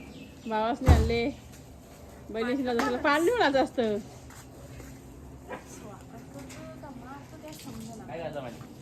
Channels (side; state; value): both; identical; correlation 1.00